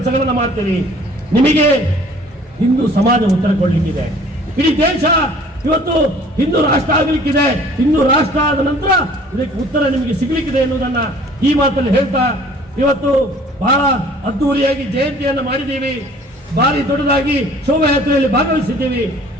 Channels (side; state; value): both; normal; correlation 0.52